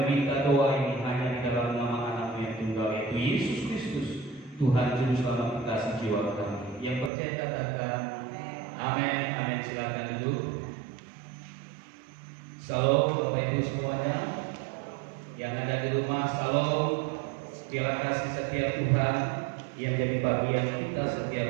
meminta doa ini hanya di dalam nama Anak-Mu yang tunggal, yaitu Yesus Kristus, Tuhan Juru Selamat kita sejiwa kami. Yang percaya katakan amin. Amin. Silakan duduk. Salam Bapak Ibu semuanya yang ada di rumah. Salam. Biarlah kasih setia Tuhan yang jadi bagian kita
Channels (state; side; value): drops out; left; at 7.1 s